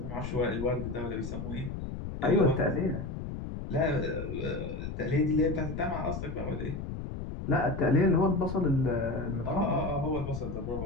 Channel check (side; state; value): left; noise; rumble, 6 dB below the sound